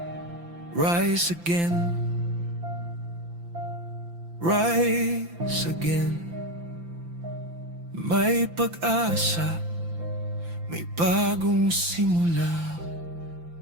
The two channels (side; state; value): left; late; 5.9 ms